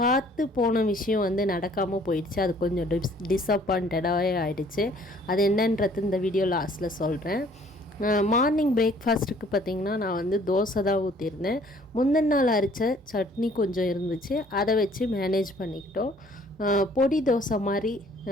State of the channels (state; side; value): normal; both; correlation 0.58